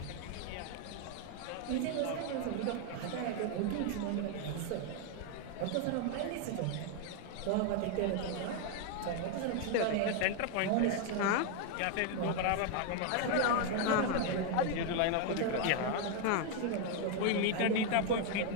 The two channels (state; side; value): different; both; correlation 0.01